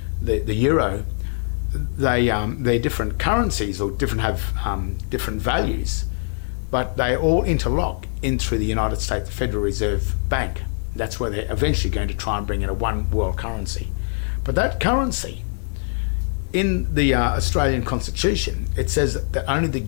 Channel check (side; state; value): right; silent; digital silence